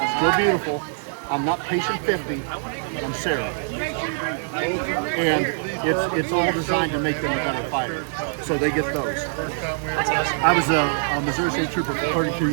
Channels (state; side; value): silent; left; digital silence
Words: still beautiful, I'm not patient 50, I'm Sarah. And it's all designed to make them a better fighter. So they get those. I was a Missouri State Trooper for 32